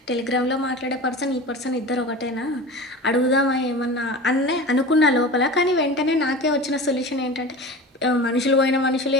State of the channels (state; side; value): normal; both; correlation 0.33